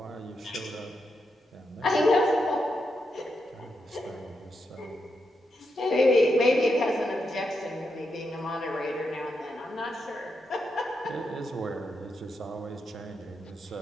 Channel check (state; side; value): normal; both; correlation 0.84